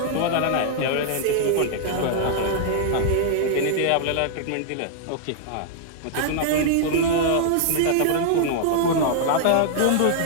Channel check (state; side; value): different; both; correlation -0.01